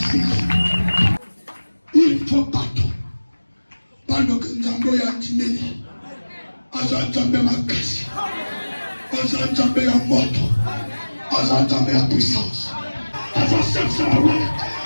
il faut battre pendant que Nzambo ya Tineli Azanzambe makasi Azanzambe ya moto Azanzambe ya puissance avancez sur la route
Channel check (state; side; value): inverted; both; correlation -1.00